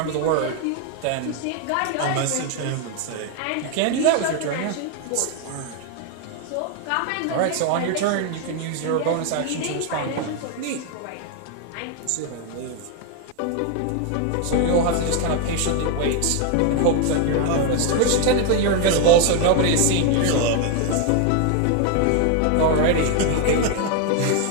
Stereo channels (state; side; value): different; both; correlation 0.01